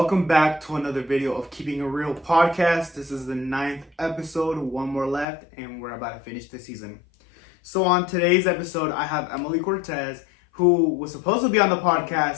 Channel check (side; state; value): right; drops out; at 5.2 s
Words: back to another video of Keeping It Real podcast. This is the 9th episode, one more left, and we're about to finish the season. So on today's episode, I have Emely Cortez, who was supposed to be on the